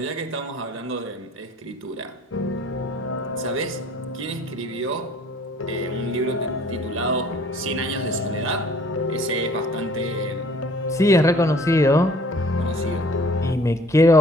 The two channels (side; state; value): both; normal; correlation 0.54